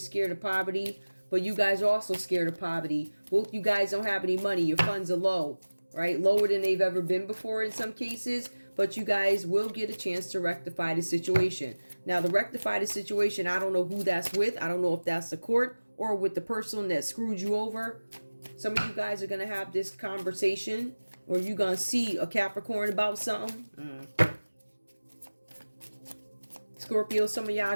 of poverty. But you guys are also scared of poverty. Both you guys don't have any money. Your funds are low. Right? Lower than they've ever been before in some cases. But you guys will get a chance to rectify the situation. Now, to rectify the situation, I don't know who that's with. I don't know if that's the court or with the person that screwed you over. Some of you guys are going to have this conversation. Or you're going to see a Capricorn about something. Scorpio, some of y'all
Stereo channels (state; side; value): inverted; both; correlation -1.00